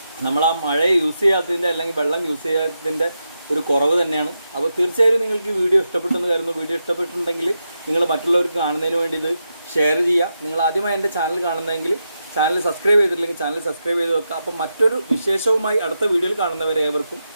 നമ്മൾ ആ മഴയെ യൂസ് ചെയ്യാത്തതിൻ്റെ അല്ലെങ്കിൽ വെള്ളം യൂസ് ചെയ്യാത്തതിൻ്റെ ഒരു കുറവ് തന്നെയാണ്. അപ്പോൾ തീർച്ചയായും നിങ്ങൾക്ക് ഈ വീഡിയോ ഇഷ്ടപ്പെട്ടെന്ന് കരുതുന്നു. വീഡിയോ ഇഷ്ടപ്പെട്ടിട്ടുണ്ടെങ്കിൽ നിങ്ങൾ മറ്റുള്ളവർക്ക് കാണുന്നതിന് വേണ്ടി ഇത് ഷെയർ ചെയ്യുക. നിങ്ങൾ ആദ്യമായി എൻ്റെ ചാനൽ കാണുന്നതെങ്കിൽ ചാനൽ സബ്സ്ക്രൈബ് ചെയ്തിട്ടില്ലെങ്കിൽ ചാനൽ സബ്സ്ക്രൈബ് ചെയ്ത് വെക്കുക. അപ്പോൾ മറ്റൊരു വിശേഷവുമായി അടുത്ത വീഡിയോയിൽ കാണുന്നവരെ ഏവർക്കും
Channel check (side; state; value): both; inverted; correlation -0.87